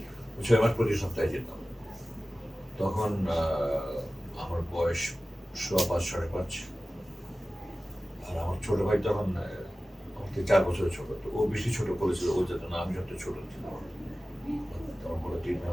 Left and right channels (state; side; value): normal; both; correlation 0.96